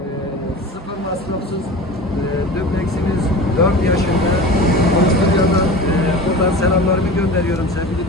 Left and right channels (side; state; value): both; normal; correlation 0.34